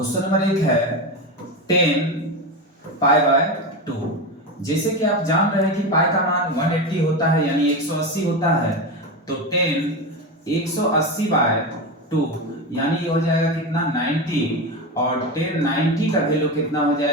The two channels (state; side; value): normal; both; correlation 0.19